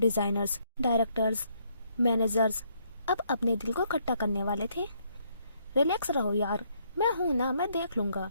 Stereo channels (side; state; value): both; inverted; correlation -0.71